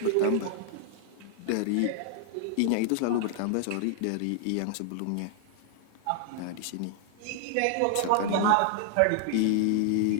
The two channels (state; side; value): different; both; correlation 0.00